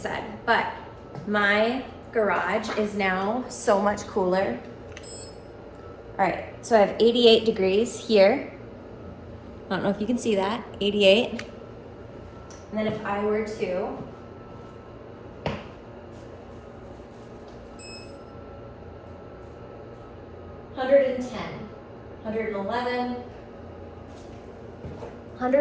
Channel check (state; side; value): identical; both; correlation 1.00